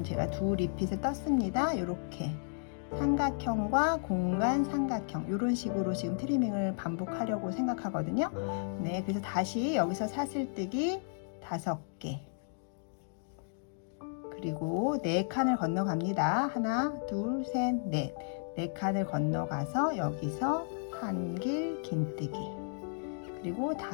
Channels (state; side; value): silent; right; digital silence